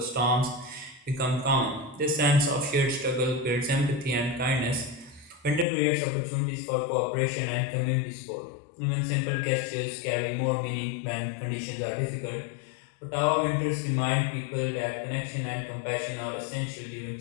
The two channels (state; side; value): drops out; right; at 5.7 s